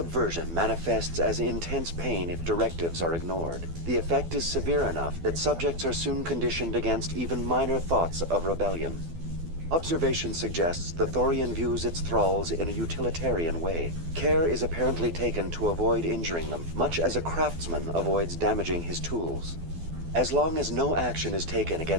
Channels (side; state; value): left; late; 12 ms